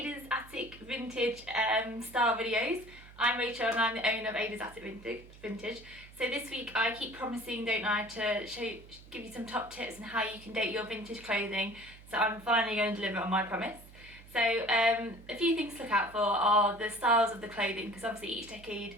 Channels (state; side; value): noise; right; hum, 20 dB below the sound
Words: Attic Vintage style videos. I'm Rachel and I'm the owner of Ada's Attic Vintage. So this week I keep promising, don't I, to give you some top tips on how you can date your vintage clothing. So I'm finally going to deliver on my promise. So a few things to look out for are the styles of the clothing, because obviously each